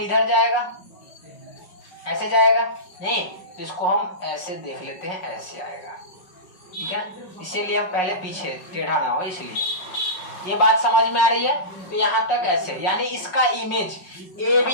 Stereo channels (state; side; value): late; right; 5.5 ms